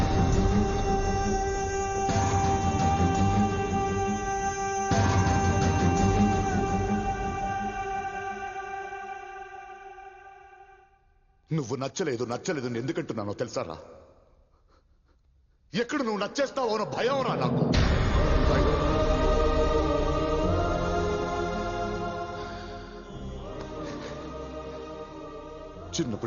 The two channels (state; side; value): identical; both; correlation 1.00